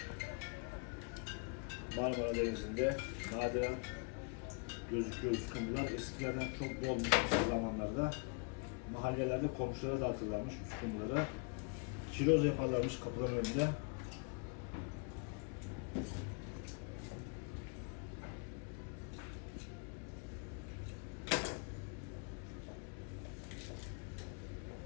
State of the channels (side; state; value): right; quieter; 36.4 dB